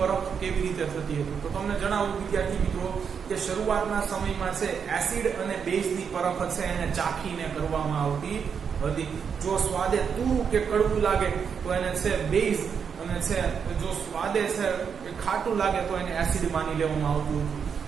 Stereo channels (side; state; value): left; quieter; 6.8 dB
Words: કેવી રીતે થતી હતી. તો તમને જણાવું વિદ્યાર્થી મિત્રો કે શરૂઆતના સમયમાં છે એસિડ અને બેઝની પરખ છે એને ચાખીને કરવામાં આવતી હતી. જો સ્વાદે તુરું કે કડવું લાગે તો એને છે બેઝ, અને છે જો સ્વાદે છે કે ખાટું લાગે તો એને એસિડ માની લેવામાં આવતું હતું.